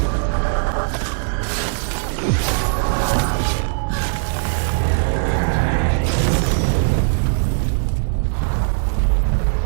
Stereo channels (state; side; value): silent; left; 56 dB below the other